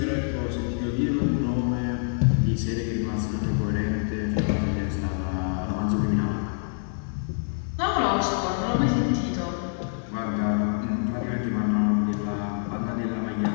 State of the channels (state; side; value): silent; right; 61 dB below the other